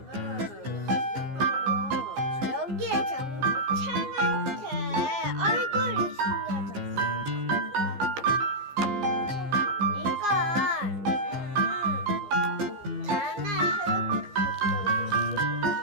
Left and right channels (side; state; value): left; late; 15 ms